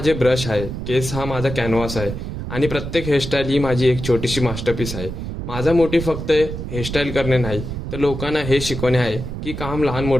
ब्रश आहे, केस हा माझा कॅनव्हास आहे आणि प्रत्येक हेअरस्टाईल ही माझी एक छोटीशी मास्टरपीस आहे. माझा मोटिव्ह फक्त हेअरस्टाईल करणे नाही तर लोकांना हे शिकवणे आहे की काम लहान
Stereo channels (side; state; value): right; noise; rumble, 6 dB below the sound